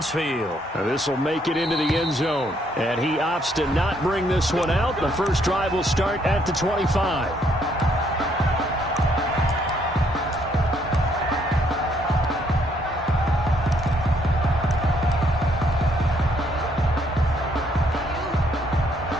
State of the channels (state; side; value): normal; both; correlation 0.69